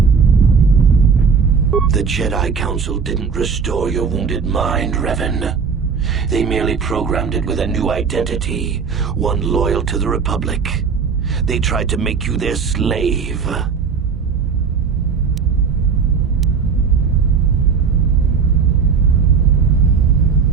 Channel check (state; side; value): quieter; left; 5.9 dB